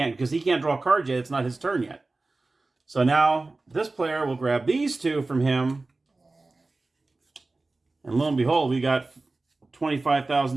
because he can't draw cards yet. It's not his turn yet. So now this player will grab these 2 from him. And lo and behold, we got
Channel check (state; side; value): quieter; left; 3.3 dB